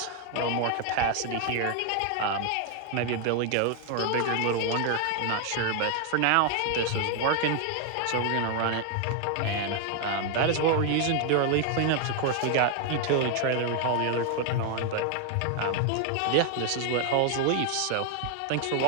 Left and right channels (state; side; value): different; both; correlation 0.00